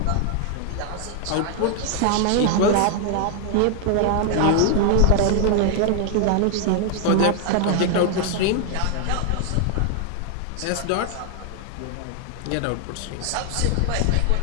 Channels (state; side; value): different; both; correlation 0.00